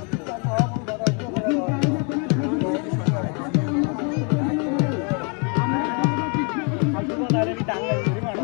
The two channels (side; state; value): right; quieter; 36.3 dB